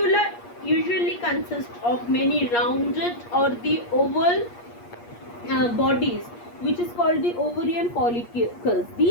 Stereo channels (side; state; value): right; late; 8.5 ms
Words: usually consists of many rounded or the oval bodies, which is called the ovarian follicles.